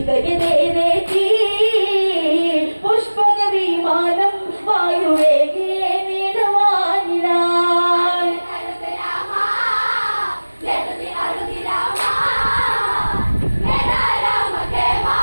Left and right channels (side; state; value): both; inverted; correlation -1.00